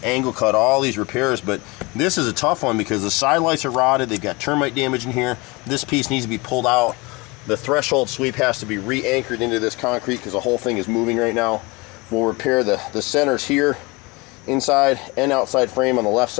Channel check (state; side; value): quieter; right; 25.5 dB